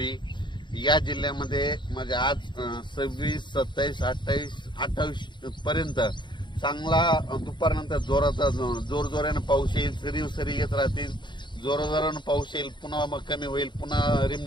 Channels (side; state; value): right; late; 0.22 ms